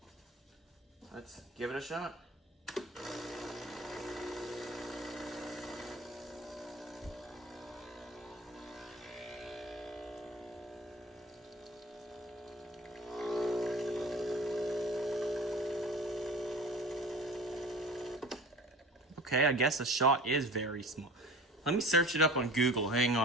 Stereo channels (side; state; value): both; normal; correlation 0.40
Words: let's give it a shot. Okay, I guess a shot is very small. Let me search it up on Google. Hang